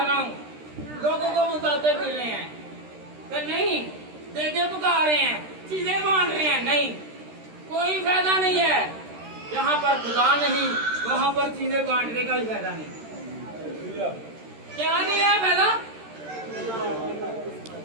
रहा हूँ, लोगों को बताते फिर रहे हैं, तो नहीं, देखे पका रहे हैं, चीजें बांट रहे हैं, नहीं, कोई फायदा नहीं है। यहाँ पर खुदा नहीं, वहाँ पर चीजें बांटने का ही फायदा नहीं। क्या नहीं है फायदा?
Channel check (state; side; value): late; left; 13 ms